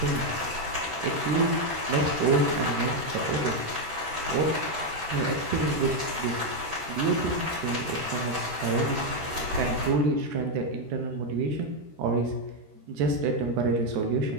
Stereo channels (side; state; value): left; late; 13 ms